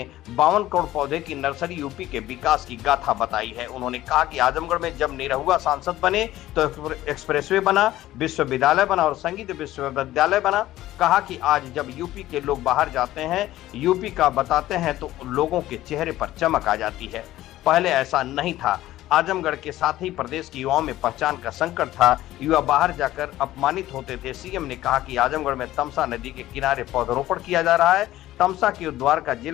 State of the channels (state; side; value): quieter; right; 15.0 dB